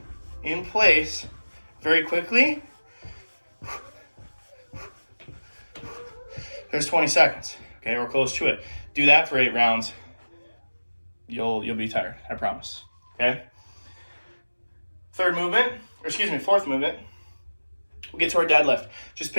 in place very quickly. There's 20 seconds, okay, or close to it. Do that for 8 rounds. You'll be tired, I promise, okay? Fourth movement, we'll get to our deadlift. Just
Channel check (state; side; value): inverted; both; correlation -1.00